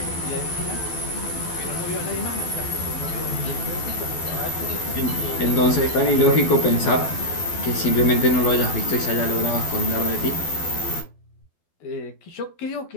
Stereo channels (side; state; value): right; late; 12 ms